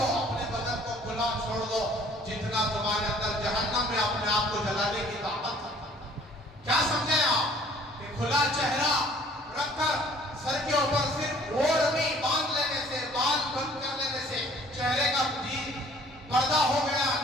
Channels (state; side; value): normal; both; correlation 0.55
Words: اپنے بدن کو کھلا چھوڑ دو جتنا تمہارے اندر جہنم میں اپنے آپ کو جلانے کی طاقت ہے۔ کیا سمجھیں آپ کہ کھلا چہرہ رکھ کر سر کے اوپر صرف اوڑھنی باندھ لینے سے، بال بند کر لینے سے چہرے کا پردہ ہو گیا،